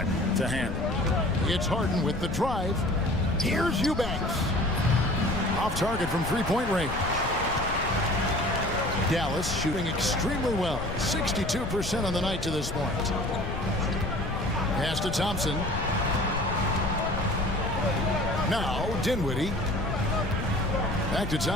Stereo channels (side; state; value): left; noise; rumble, 7 dB below the sound